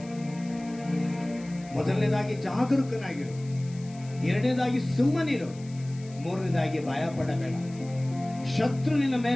ಮೊದಲನೇದಾಗಿ ಜಾಗರೂಕನಾಗಿರು, ಎರಡನೇದಾಗಿ ಸುಮ್ಮನಿರು, ಮೂರನೇದಾಗಿ ಭಯ ಪಡಬೇಡ. ಶತ್ರು ನಿನ್ನ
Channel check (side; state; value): left; noise; hiss, 22 dB below the sound